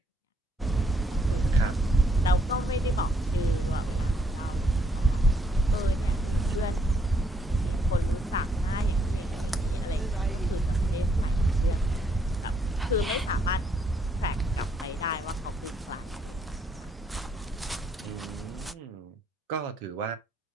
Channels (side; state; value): both; normal; correlation 0.72